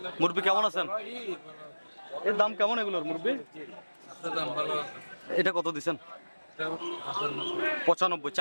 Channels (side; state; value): both; inverted; correlation -1.00